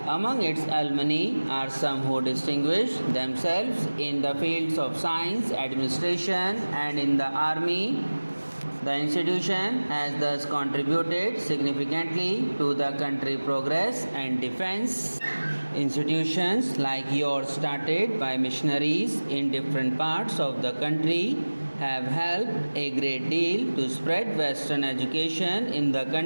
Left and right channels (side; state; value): both; inverted; correlation -1.00